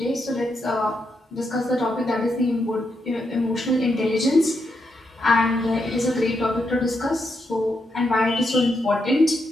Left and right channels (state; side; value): normal; both; correlation 0.82